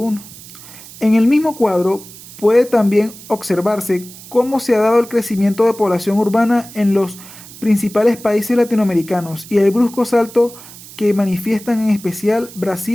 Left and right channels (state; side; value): noise; right; hiss, 18 dB below the sound